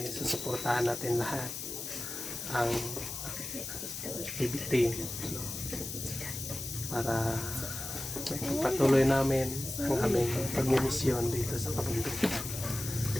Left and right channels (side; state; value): left; noise; hiss, 7 dB below the sound